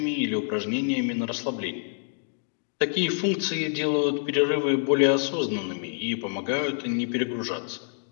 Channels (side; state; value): right; silent; digital silence